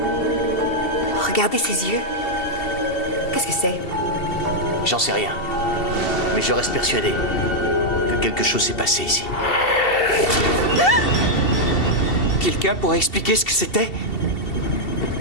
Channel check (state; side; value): late; right; 2.7 ms